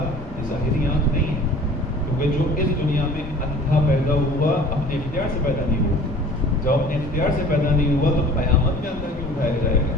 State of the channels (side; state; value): both; normal; correlation 0.47